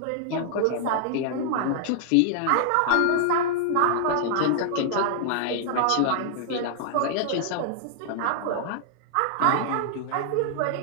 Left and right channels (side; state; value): both; different; correlation -0.01